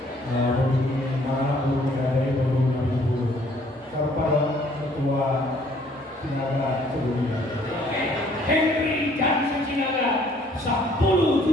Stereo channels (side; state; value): both; normal; correlation 0.61